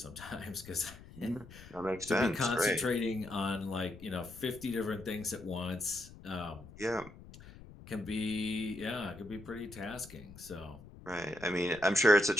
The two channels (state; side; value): noise; left; rumble, 18 dB below the sound